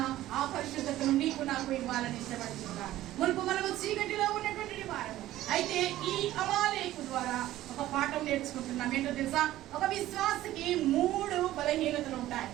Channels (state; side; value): quieter; left; 14.7 dB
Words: ఆ పరిశుద్ధతను నీకు నాకు ఇవ్వాలని ఇష్టపడుతున్నాడు. మునుపు మనము చీకటిలో ఉన్నటువంటి వారము. అయితే ఈ అమాలేకు ద్వారా ఒక పాఠం నేర్చుకుంటున్నాం. ఏంటో తెలుసా? ఒక విశ్వాసకి 3 బలహీనతలు ఉంటాయి,